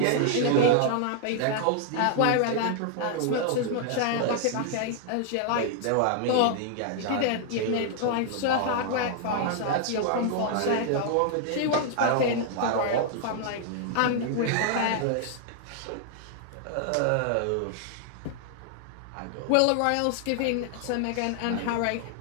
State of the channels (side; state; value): both; different; correlation 0.00